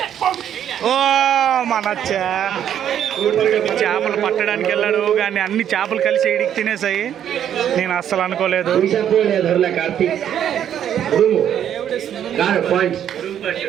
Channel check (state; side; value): quieter; left; 9.8 dB